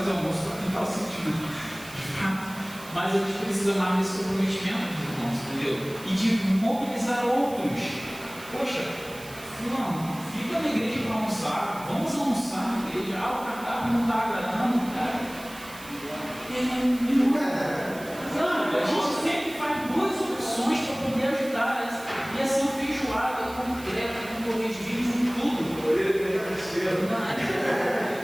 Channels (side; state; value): right; noise; hiss, 17 dB below the sound